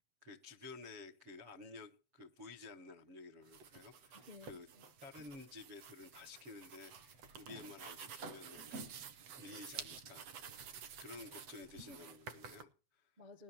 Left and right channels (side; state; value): left; late; 7.9 ms